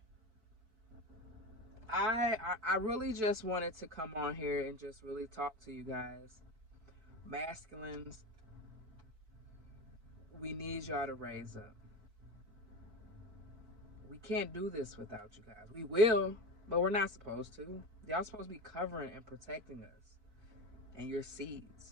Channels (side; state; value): left; late; 4.6 ms